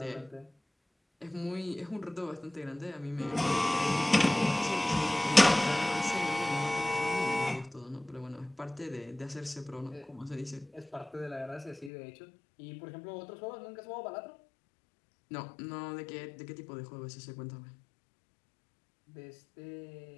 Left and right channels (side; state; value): right; drops out; at 11.9 s